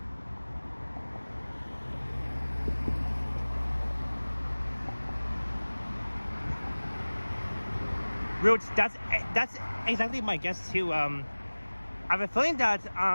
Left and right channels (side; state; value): both; inverted; correlation -1.00